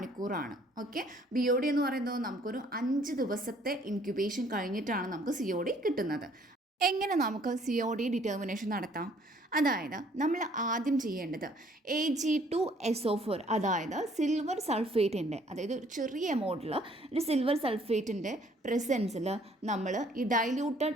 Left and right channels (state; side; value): normal; both; correlation 0.61